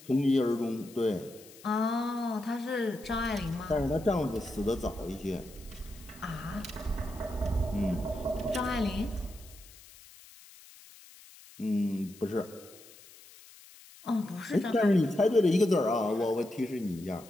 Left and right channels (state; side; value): noise; left; hiss, 21 dB below the sound